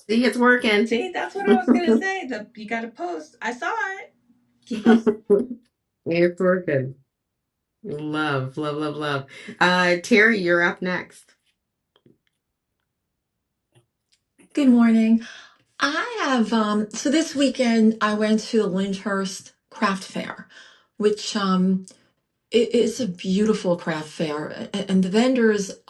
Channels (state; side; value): identical; both; correlation 1.00